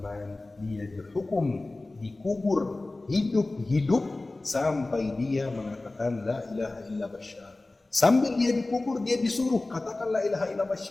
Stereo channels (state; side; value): quieter; right; 3.0 dB